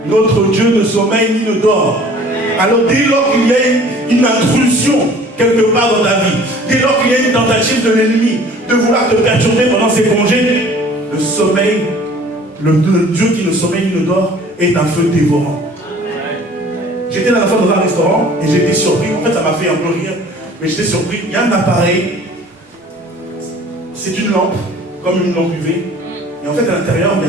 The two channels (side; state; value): both; normal; correlation 0.50